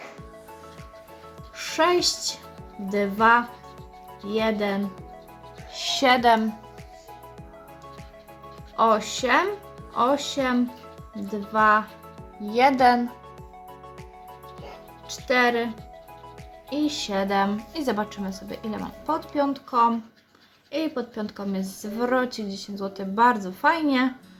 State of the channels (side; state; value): both; identical; correlation 1.00